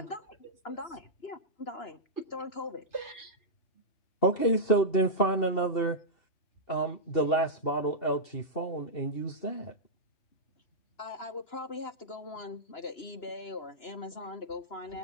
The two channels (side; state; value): right; late; 2.7 ms